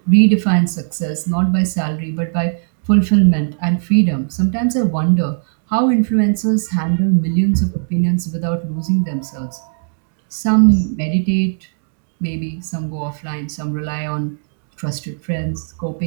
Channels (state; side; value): silent; left; digital silence